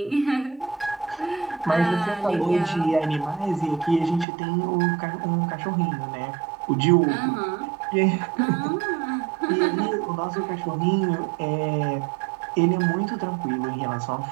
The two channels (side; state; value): left; drops out; at 4.2 s